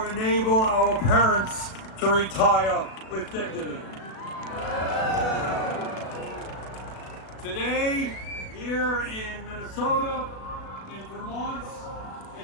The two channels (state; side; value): late; right; 36 ms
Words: enable our parents to retire with dignity. Today, here in Minnesota, in Vermont,